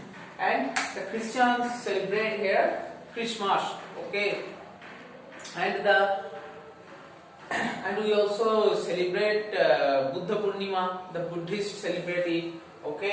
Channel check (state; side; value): identical; both; correlation 1.00